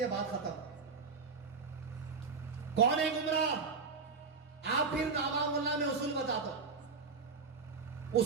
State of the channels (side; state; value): left; quieter; 4.9 dB